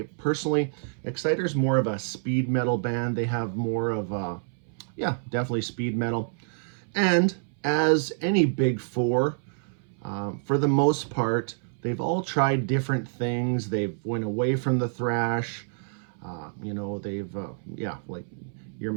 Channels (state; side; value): silent; left; 60 dB below the other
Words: personally, Exciter's more of a speed metal band. They have more of definitely speed metal. And as any big four, for the most part, they've all tried different things. They've went away from the thrash. They've like your